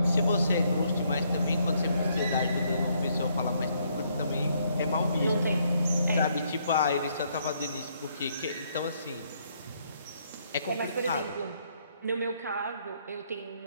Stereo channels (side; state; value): both; inverted; correlation -0.71